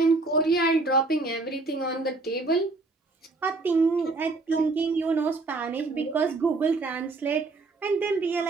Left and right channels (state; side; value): quieter; left; 3.5 dB